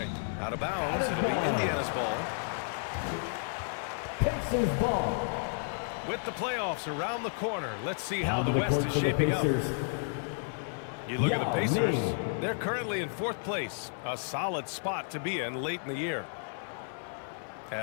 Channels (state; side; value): silent; right; 56 dB below the other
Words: Out of bounds, it'll be Indiana's ball. Pacers ball. With the playoffs around the corner, let's see how the West is shaping up. You look at the Pacers, they're currently in 4th place, a solid spot to be in late in the year.